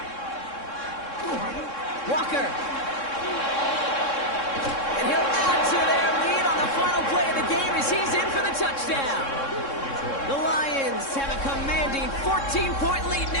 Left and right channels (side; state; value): right; late; 3.6 ms